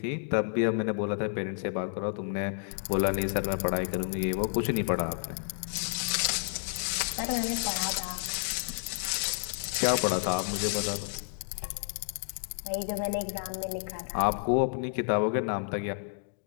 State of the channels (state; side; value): silent; right; digital silence